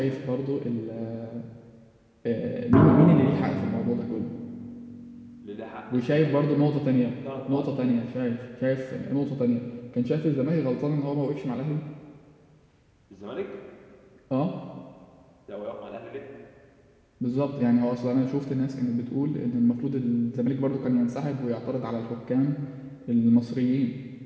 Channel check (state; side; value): identical; both; correlation 1.00